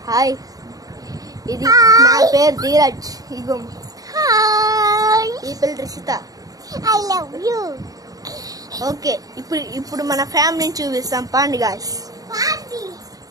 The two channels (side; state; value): left; late; 0.18 ms